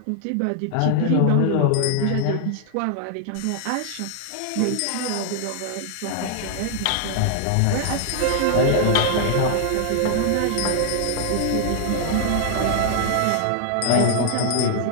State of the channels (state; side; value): different; both; correlation 0.00